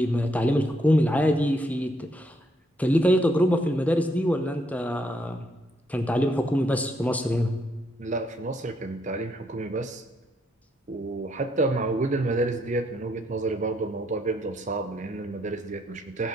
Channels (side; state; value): both; normal; correlation 0.74